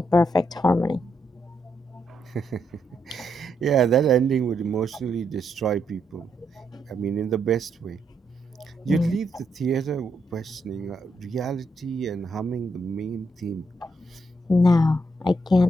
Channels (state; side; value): normal; both; correlation 0.78